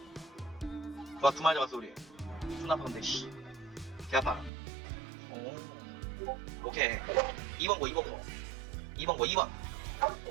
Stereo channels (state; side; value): drops out; left; at 4.5 s